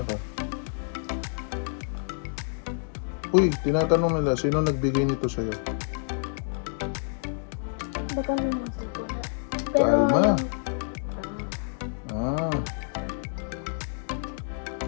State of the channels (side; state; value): right; silent; digital silence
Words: ka? Uy, tinatanong nila, sino nagbigay nito sa'yo? Baka naman ko na. Kalma. Ah.